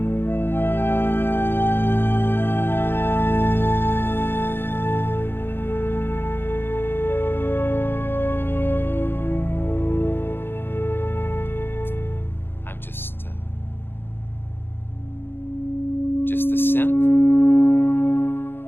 Just the synth.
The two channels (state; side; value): late; right; 0.10 ms